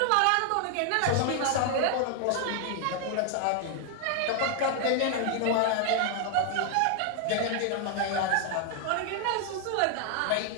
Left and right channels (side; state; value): both; different; correlation 0.00